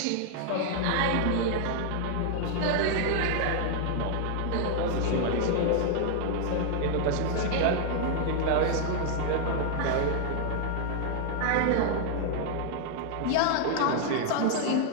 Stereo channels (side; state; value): both; different; correlation 0.00